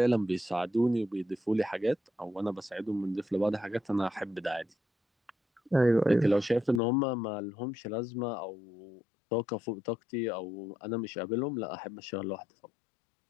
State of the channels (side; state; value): right; drops out; at 6.8 s